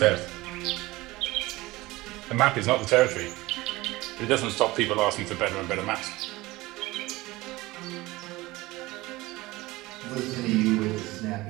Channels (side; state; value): left; quieter; 19.9 dB